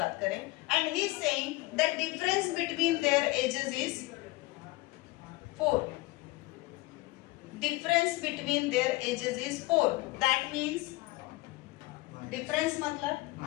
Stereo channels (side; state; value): right; quieter; 21.6 dB